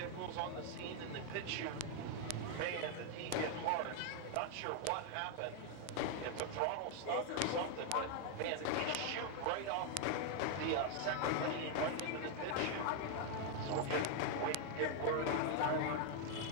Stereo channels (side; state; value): both; different; correlation 0.00